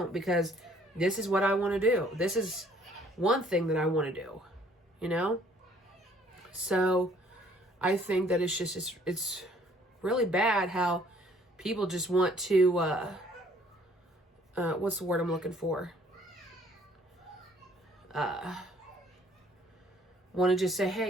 because this is what I want to do. This is one thing that I want to do, you know? So I think that it's just, it's really bad how people just want to, what's the word I'm looking for? Want to just say,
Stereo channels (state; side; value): normal; both; correlation 0.60